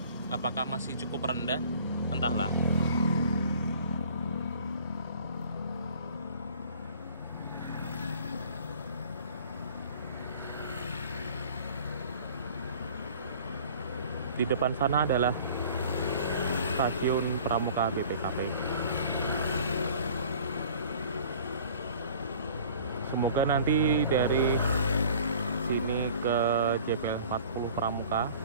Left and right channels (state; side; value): inverted; both; correlation -0.48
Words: Apakah masih cukup rendah? Entahlah. Di depan sana adalah stasiun Pramuka BPKP. Semoga nanti dari sini ke JPL 40 Pramuka